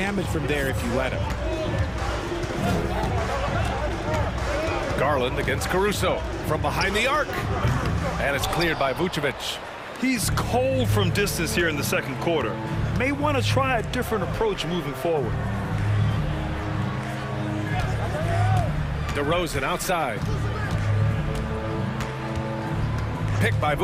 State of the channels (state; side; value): identical; both; correlation 1.00